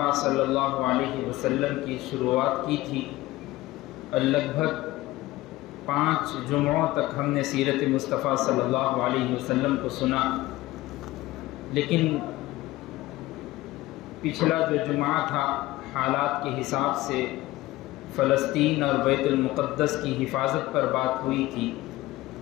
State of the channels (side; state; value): right; quieter; 17.8 dB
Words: صلی اللہ علیہ وسلم کی شروعات کی تھی اور لگ بھگ 5 جمعوں تک ہم نے سیرت مصطفیٰ صلی اللہ علیہ وسلم کو سنا، لیکن پچھلا جو جمعہ تھا حالات کے حساب سے فلسطین اور بیت المقدس کی حفاظت پر بات ہوئی تھی۔